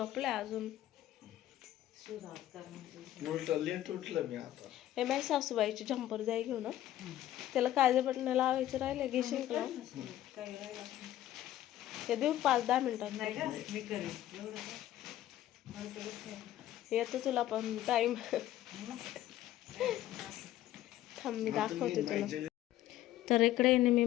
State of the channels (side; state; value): right; quieter; 13.4 dB